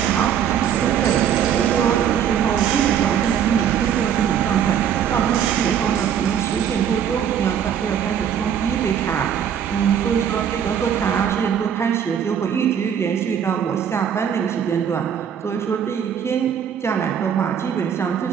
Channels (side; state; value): left; quieter; 8.6 dB